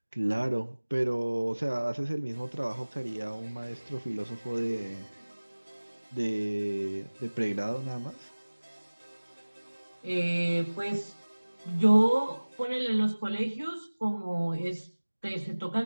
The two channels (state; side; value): inverted; both; correlation -1.00